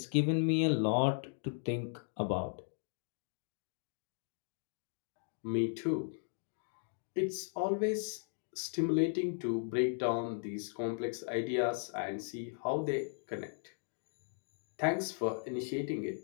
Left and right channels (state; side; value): silent; right; digital silence